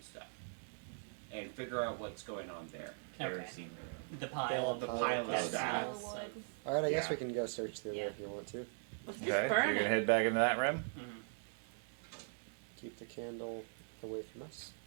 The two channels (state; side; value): silent; left; digital silence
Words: stuff, and figure out what's going on there. Okay. Kerosene room. The pile The of pile of that stuff. smells of- All right, I guess Yeah. we can go search through Yeah. there if you want to. let's just Okay, so burn you're gonna it. head back into that room. Mhm. Keep the candle away from us.